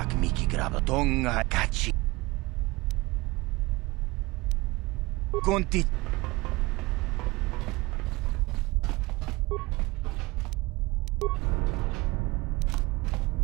miki grab tonga kachi. Conti.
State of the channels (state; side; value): quieter; left; 22.3 dB